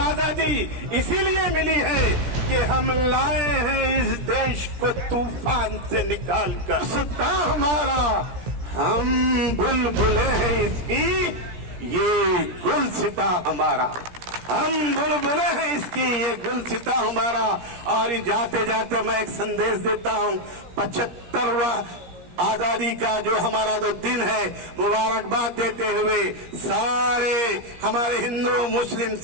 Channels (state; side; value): late; left; 17 ms